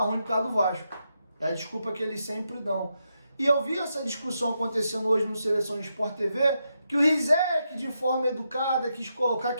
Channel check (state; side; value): inverted; both; correlation -0.84